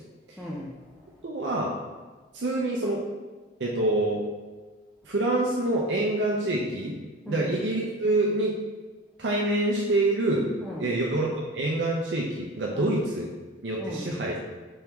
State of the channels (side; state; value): both; normal; correlation 0.31